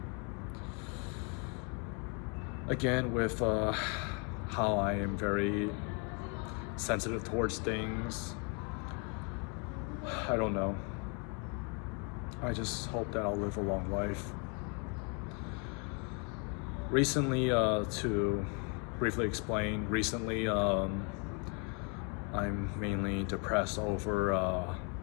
Again, with how I am very sensitive towards things, I don't know. I just hope that I'll live a long life. Recently, to briefly explain, I'm mainly depressed over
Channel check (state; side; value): quieter; right; 35.8 dB